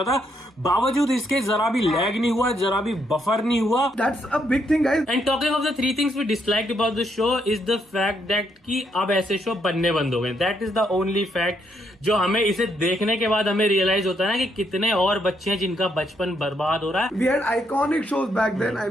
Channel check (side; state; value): both; normal; correlation 0.75